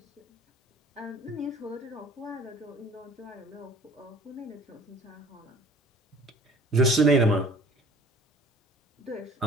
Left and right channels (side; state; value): both; normal; correlation 0.49